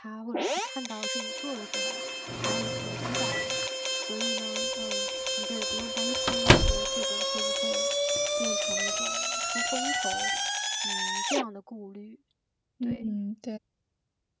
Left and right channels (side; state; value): both; identical; correlation 1.00